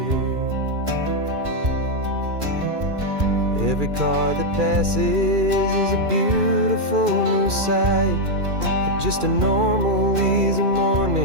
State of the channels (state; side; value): late; left; 2.4 ms